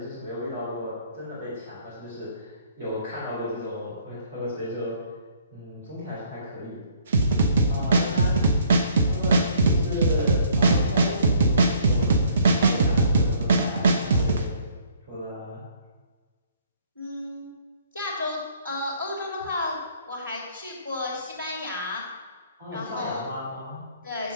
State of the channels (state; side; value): inverted; both; correlation -0.62